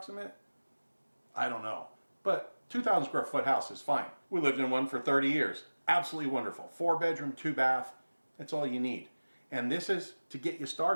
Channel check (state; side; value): inverted; both; correlation -1.00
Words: I don't know. But 2,000 square foot house is fine. We lived in one for 30 years. Absolutely wonderful. 4-bedroom, 2-bath. That's all you need. And this is to get you